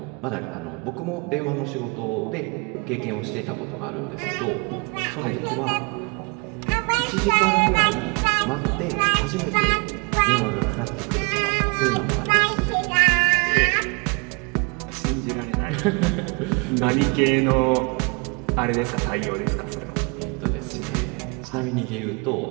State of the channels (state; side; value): quieter; left; 31.4 dB